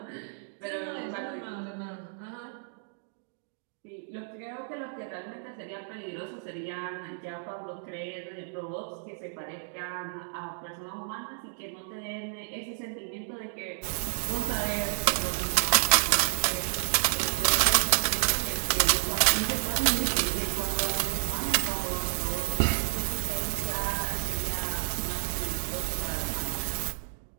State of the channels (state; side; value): silent; left; digital silence